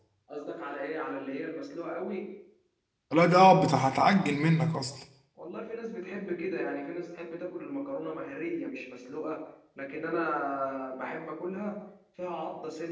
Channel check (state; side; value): identical; both; correlation 1.00